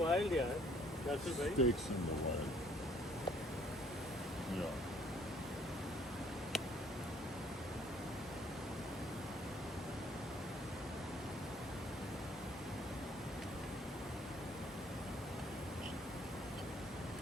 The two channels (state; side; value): normal; both; correlation 0.61